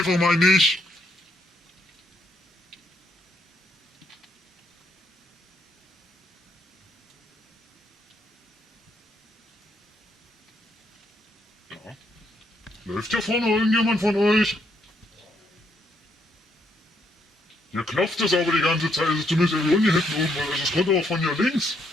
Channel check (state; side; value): normal; both; correlation 0.74